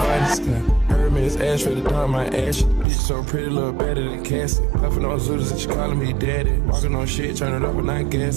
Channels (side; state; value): left; drops out; at 2.9 s